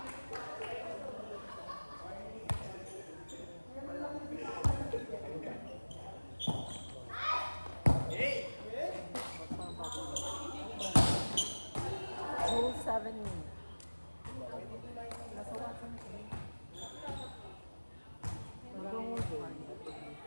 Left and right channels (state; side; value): inverted; both; correlation -1.00